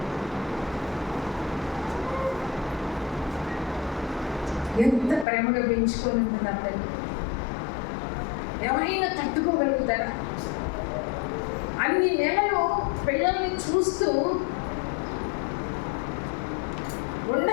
ఎంత ప్రేమగా పెంచుకొని ఉంటుంది ఆ తల్లి. ఎవరైనా తట్టుకోగలుగుతారా? అన్ని నెలలు పిల్లల్ని చూస్తూ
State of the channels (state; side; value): drops out; right; at 5.2 s